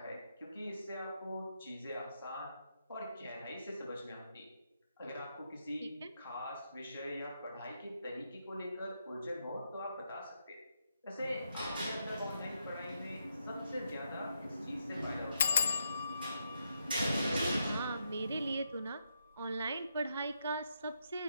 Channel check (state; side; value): inverted; both; correlation -0.80